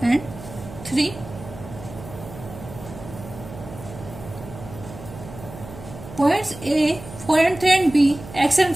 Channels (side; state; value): right; noise; hum, 14 dB below the sound